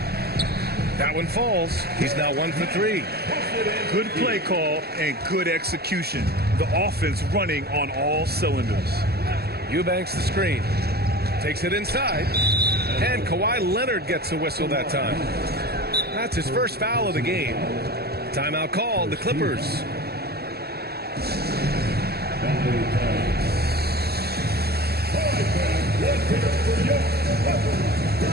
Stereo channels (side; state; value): left; late; 0.46 ms